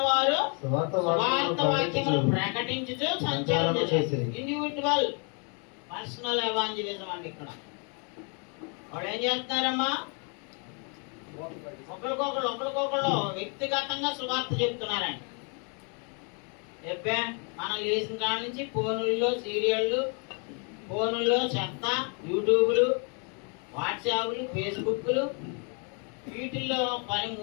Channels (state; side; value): quieter; right; 37.5 dB